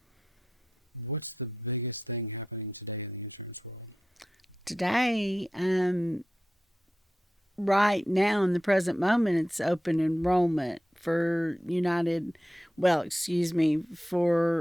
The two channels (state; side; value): normal; both; correlation 0.89